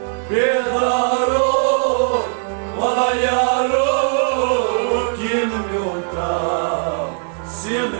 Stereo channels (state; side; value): silent; left; 61 dB below the other